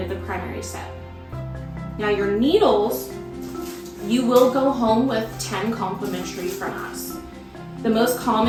of the primary set. Now your needles, you will go home with 10 complimentary from us. The most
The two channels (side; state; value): both; identical; correlation 1.00